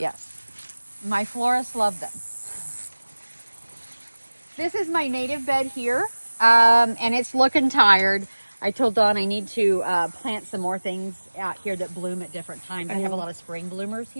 My florists love them. This is my native bed here, and it's looking tired. I told Dawn I need to plant some more things out here that bloom at different times. I have a lot of spring bloomers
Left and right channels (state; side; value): inverted; both; correlation -1.00